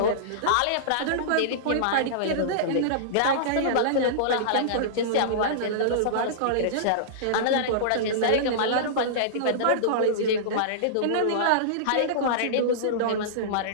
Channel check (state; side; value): different; both; correlation -0.03